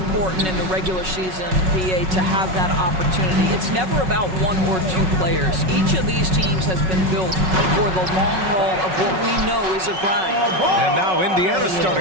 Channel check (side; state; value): left; late; 5.4 ms